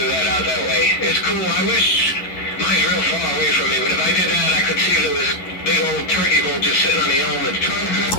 that out that way. It's cool. I wish mine's real far away from me, but if I did that, I could see there was big old turkey bolt just sitting on the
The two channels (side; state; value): right; late; 11 ms